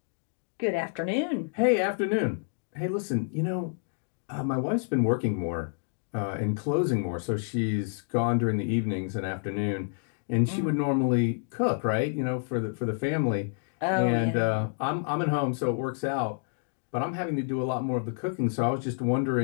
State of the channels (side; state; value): right; silent; digital silence